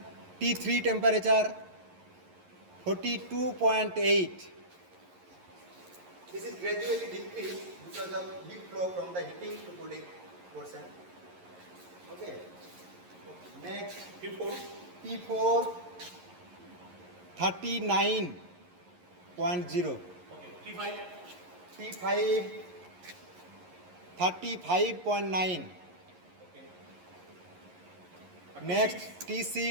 T3 temperature 42.8. This is gradually decreased because of heat flow from the heating to cooling portion. Okay. Next T4 39.0. Okay. T5 35.9. Next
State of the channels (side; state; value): left; late; 11 ms